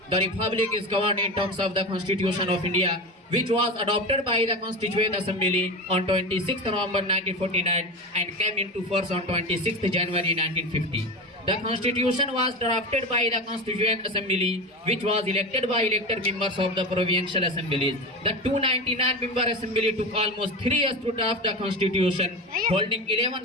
The Republic is governed in terms of the Constitution of India, which was adopted by the Constituent Assembly on 26 November 1949 and came into force on 26 January 1950. The Constitution was drafted by the Constituent Assembly, which was elected by elected members of the provincial assemblies. The 299-member assembly took almost 3 years to draft the Constitution, holding 11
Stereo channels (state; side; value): normal; both; correlation 0.24